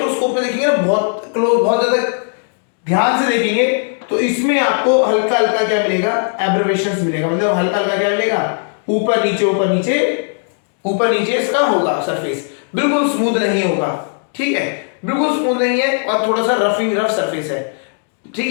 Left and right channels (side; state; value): right; silent; 68 dB below the other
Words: में देखेंगे ना, बहुत क्लोज, बहुत ज्यादा ध्यान से देखेंगे तो इसमें आपको हल्का हल्का क्या मिलेगा, एब्रेवेशंस मिलेगा, मतलब हल्का हल्का क्या मिलेगा, ऊपर नीचे ऊपर नीचे ऊपर नीचे इसका होगा सरफेस, बिल्कुल स्मूथ नहीं होगा। ठीक है, बिल्कुल स्मूथ नहीं है और थोड़ा सा रफ सरफेस है। ठीक